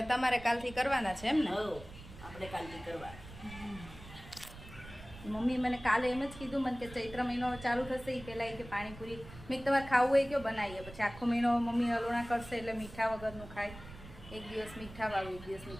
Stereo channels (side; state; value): right; noise; rumble, 16 dB below the sound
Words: તમારે કાલથી કરવાના છે એમ ને? આપણે કાલથી કરવા. મમ્મી મને કાલે એમ જ કીધું મને કે ચૈત્ર મહિનો ચાલુ થશે એ પહેલાં કે પાણીપુરી મેં તમારે ખાવું હોય કે બનાવીએ. પછી આખો મહિનો મમ્મી હલોણા કરશે એટલે મીઠા વગરનું ખાય. એક દિવસ મીઠાવાળું, એક દિવસ